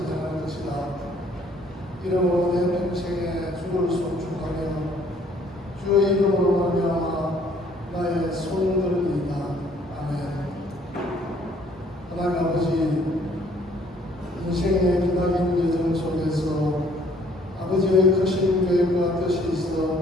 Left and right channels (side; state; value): both; normal; correlation 0.61